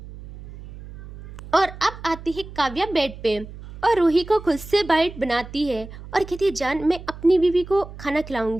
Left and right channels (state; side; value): noise; right; hum, 15 dB below the sound